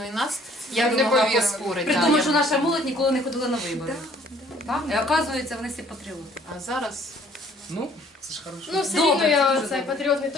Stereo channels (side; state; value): both; normal; correlation 0.59